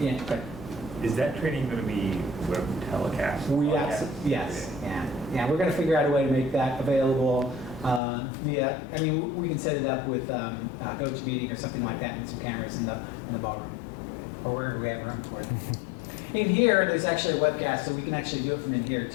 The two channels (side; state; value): right; drops out; at 8.0 s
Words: yeah, but Is that training going to be web telecast? yes, yeah. We're going to figure out a way to make that available via. I mean, we can set it up with GoToMeeting or something like that, and some cameras in the ballroom or wherever we have room for it. In here, there's actually a webcast, so we can actually do it from in here